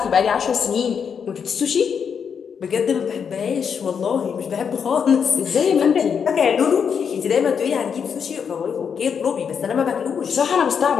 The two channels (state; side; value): quieter; right; 6.9 dB